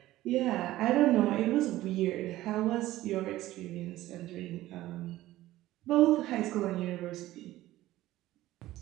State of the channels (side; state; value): left; quieter; 15.7 dB